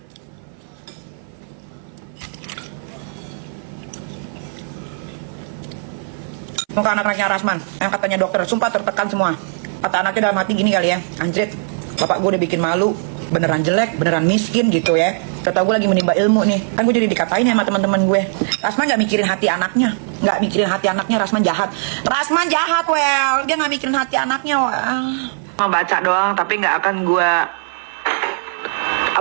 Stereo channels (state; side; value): silent; left; 57 dB below the other